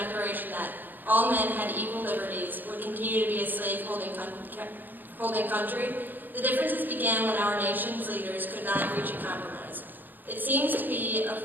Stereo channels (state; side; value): late; left; 0.088 ms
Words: that all men had equal liberties, would continue to be a slave-holding country? The differences began when our nation's leaders could not reach a compromise. It seems to be a